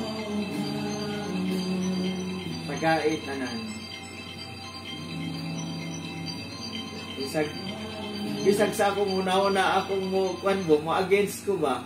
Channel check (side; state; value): both; identical; correlation 1.00